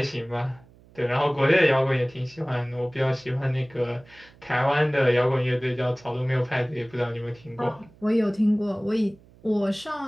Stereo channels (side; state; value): right; noise; hum, 26 dB below the sound